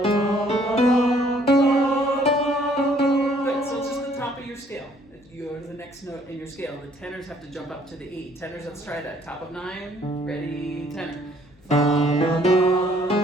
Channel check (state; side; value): noise; left; hum, 29 dB below the sound